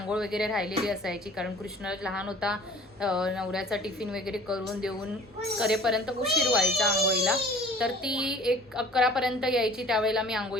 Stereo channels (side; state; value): both; normal; correlation 0.48